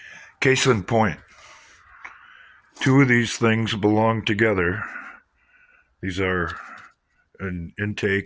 Case in point, two of these things belong together. These are an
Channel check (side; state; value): both; identical; correlation 1.00